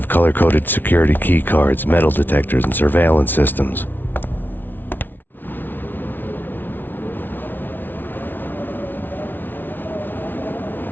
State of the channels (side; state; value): right; late; 0.092 ms